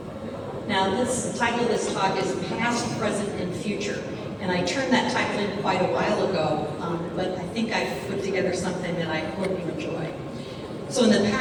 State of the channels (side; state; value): both; identical; correlation 1.00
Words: Now, the title of this talk is Past, Present, and Future. And I turned that title in quite a while ago, but I think I've put together something that I hope you enjoy. So in the